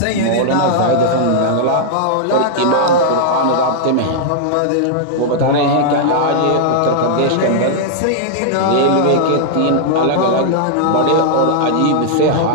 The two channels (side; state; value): both; different; correlation -0.01